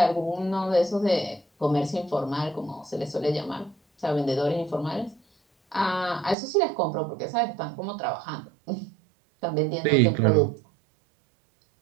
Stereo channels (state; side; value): drops out; left; at 6.4 s